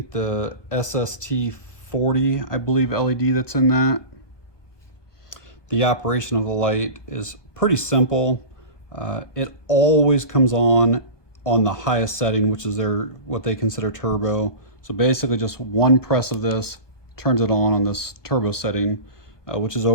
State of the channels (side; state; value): right; late; 1.2 ms